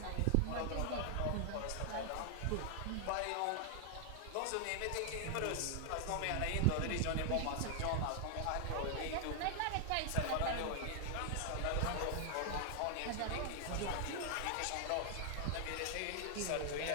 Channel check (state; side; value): different; both; correlation 0.00